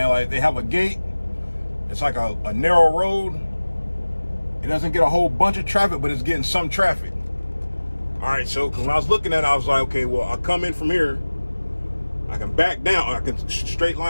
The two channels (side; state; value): both; inverted; correlation -1.00